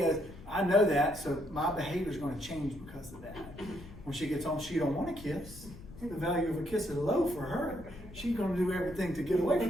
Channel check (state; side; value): noise; left; rumble, 16 dB below the sound